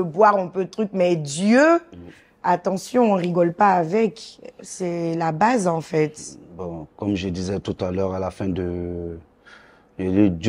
boire, on peut truc, mais Dieu, attention, on rigole pas avec. C'est la base, en fait. Bon, comme je disais tout à l'heure, à la fin de...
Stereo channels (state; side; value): identical; both; correlation 1.00